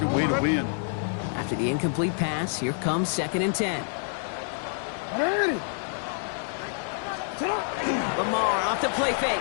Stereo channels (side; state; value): right; silent; digital silence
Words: a way to win. After the incomplete pass, here comes 2nd and 10. 180. Sit up. Lamar off to play fake.